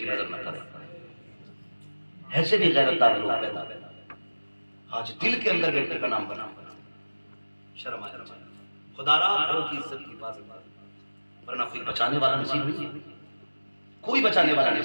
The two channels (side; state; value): both; inverted; correlation -1.00